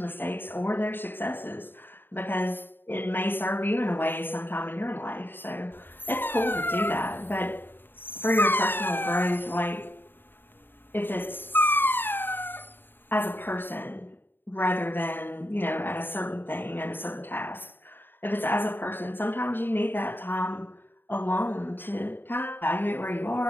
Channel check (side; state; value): right; late; 0.096 ms